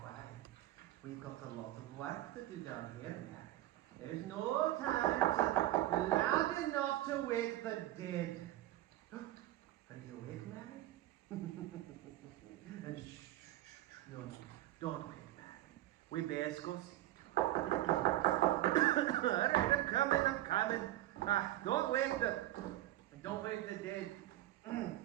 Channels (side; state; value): left; quieter; 14.9 dB